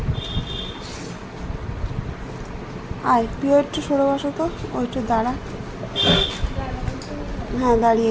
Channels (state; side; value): identical; both; correlation 1.00